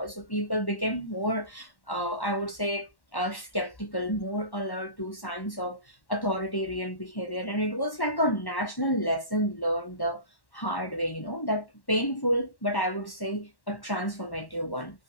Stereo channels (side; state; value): right; late; 1.1 ms